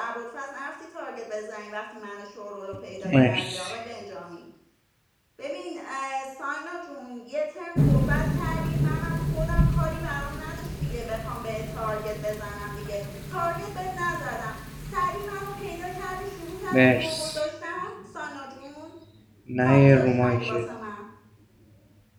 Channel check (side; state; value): both; identical; correlation 1.00